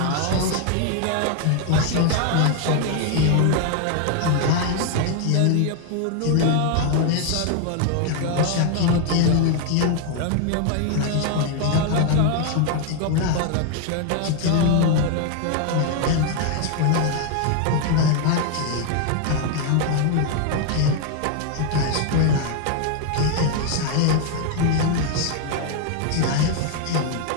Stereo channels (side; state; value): both; different; correlation 0.01